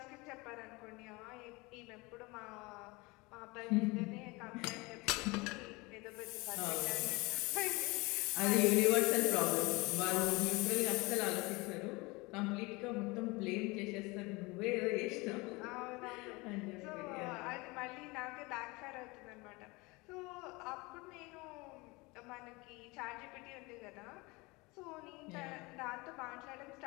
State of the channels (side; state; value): right; quieter; 24.7 dB